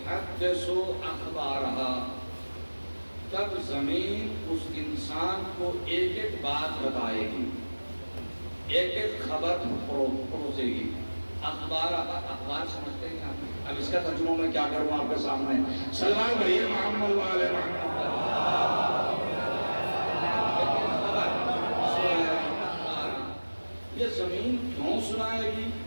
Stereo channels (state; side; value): inverted; both; correlation -1.00